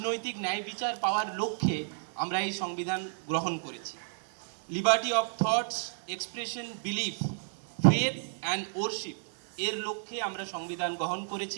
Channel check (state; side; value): silent; left; 57 dB below the other